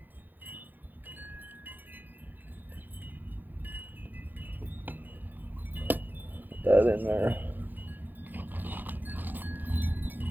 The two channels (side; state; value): left; late; 0.087 ms